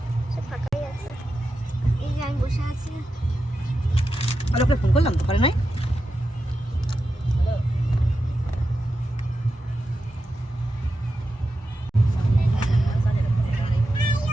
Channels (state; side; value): normal; both; correlation 0.90